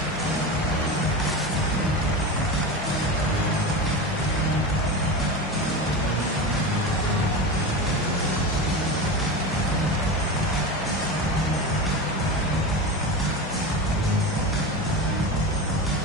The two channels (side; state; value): both; normal; correlation 0.24